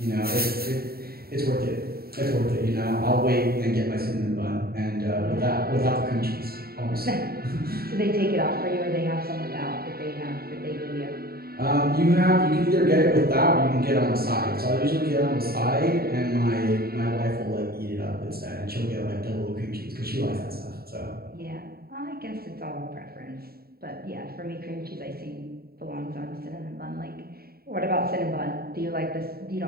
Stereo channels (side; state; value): left; late; 0.45 ms